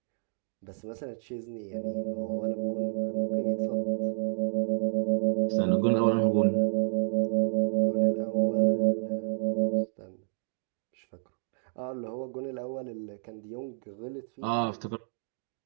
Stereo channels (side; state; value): left; silent; digital silence